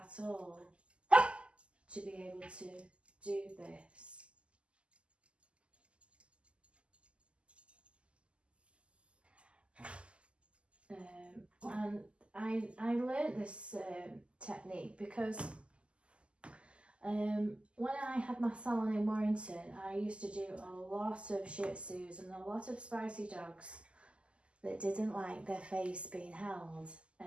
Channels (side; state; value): left; late; 0.054 ms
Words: all to be able to do this. And I learned this technique because when I had my salon in Warrington, I used to do a lot of Shih Tzus and a lot of spicy dogs that didn't like their face being held.